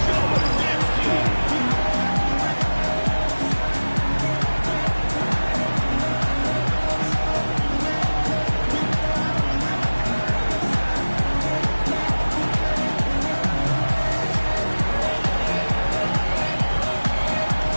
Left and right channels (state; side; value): inverted; both; correlation -1.00